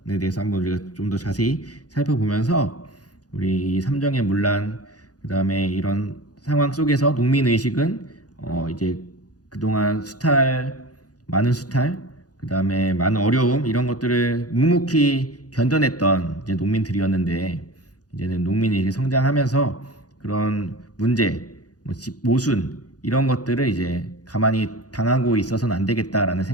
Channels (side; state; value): right; late; 0.68 ms